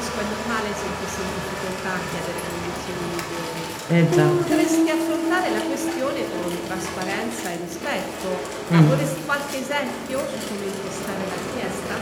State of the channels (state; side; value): identical; both; correlation 1.00